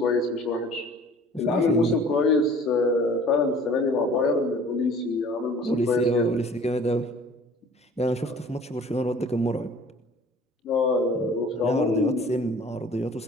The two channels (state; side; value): normal; both; correlation 0.49